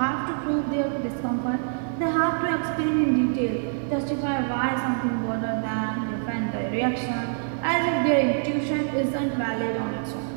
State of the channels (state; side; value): silent; left; digital silence